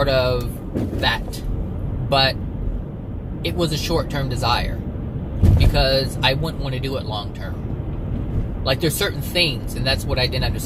of that, but it was a short-term desire, because I wouldn't want to do it long-term. Like, there's certain things, and that's what I didn't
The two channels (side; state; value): both; identical; correlation 1.00